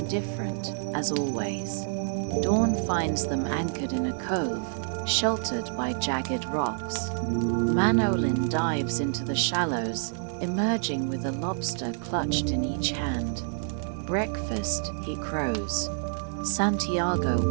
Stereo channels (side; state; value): left; silent; 59 dB below the other